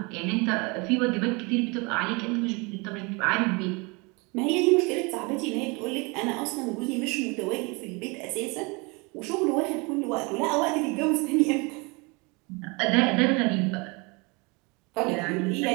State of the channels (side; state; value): left; quieter; 28.5 dB